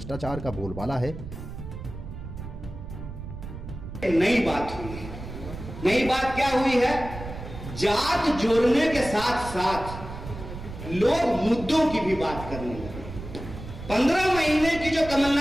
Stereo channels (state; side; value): noise; right; rumble, 11 dB below the sound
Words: का बोलबाला है। नई बात हुई है। नई बात क्या हुई है? जात जोड़ने के साथ साथ लोग मुद्दों की भी बात करने लगे। 15 महीने की जो